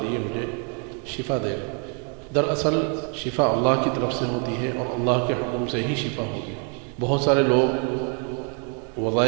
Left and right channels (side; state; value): left; quieter; 39.5 dB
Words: مجھے شفا دے گا۔ دراصل شفا اللہ کی طرف سے ہوتی ہے اور اللہ کے حکم سے ہی شفا ہوگی۔ بہت سارے لوگ